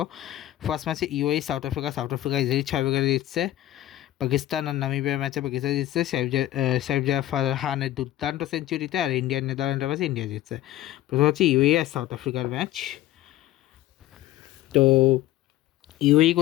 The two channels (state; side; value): quieter; right; 14.2 dB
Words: ফার্স্ট ম্যাচে ইউএই সাউথ আফ্রিকা ইজিলি 6 উইকেটে জিতছে। পাকিস্তান আর নামিবিয়ার ম্যাচে পাকিস্তান জিতছে সাইফজা ফারহানের দুর্দান্ত সেঞ্চুরিতে, আর ইন্ডিয়ান নেদারল্যান্ডের ম্যাচে ইন্ডিয়া জিতছে। প্রথম হচ্ছে ইউএই আর সাউথ আফ্রিকার ম্যাচ। তো ইউএই